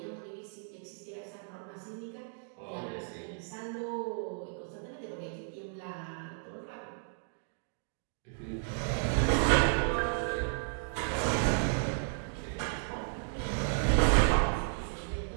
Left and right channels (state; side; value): silent; left; digital silence